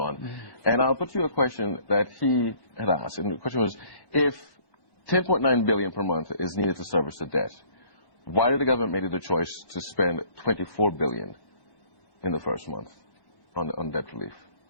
And I'll put you a question that he had asked. And the question was, if 10.9 billion per month is needed to service the debt, why did the government make the choice to spend 24 billion in the first month on debt relief?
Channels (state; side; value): late; right; 1.1 ms